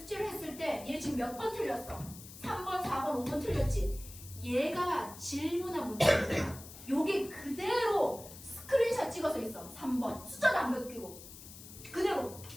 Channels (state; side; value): noise; left; hiss, 15 dB below the sound